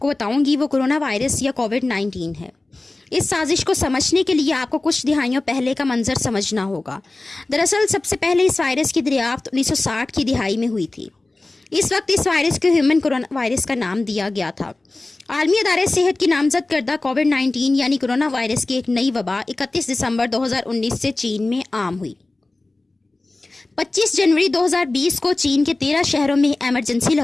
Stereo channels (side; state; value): right; quieter; 3.0 dB